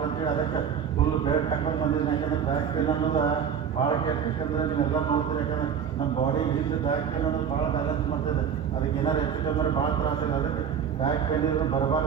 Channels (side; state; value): left; quieter; 7.8 dB